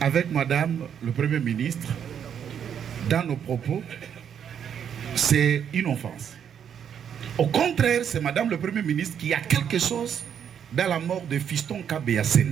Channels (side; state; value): left; quieter; 8.4 dB